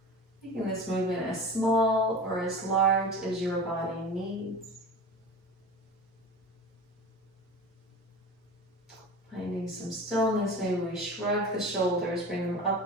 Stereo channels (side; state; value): both; normal; correlation 0.34